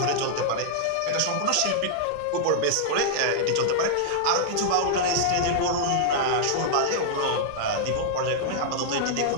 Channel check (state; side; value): different; both; correlation -0.01